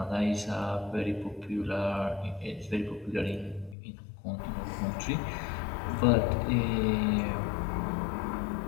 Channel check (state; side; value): drops out; right; at 3.8 s